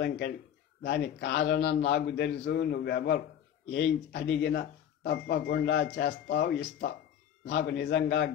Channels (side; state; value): right; quieter; 9.6 dB